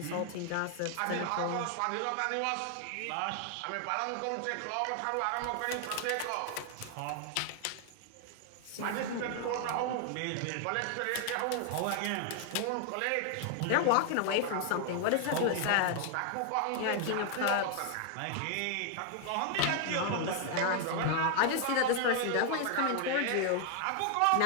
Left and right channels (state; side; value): different; both; correlation 0.00